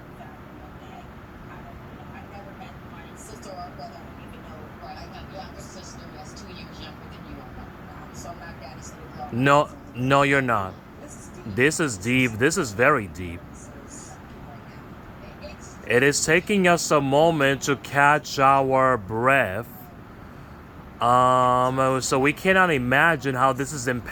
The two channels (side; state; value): both; identical; correlation 1.00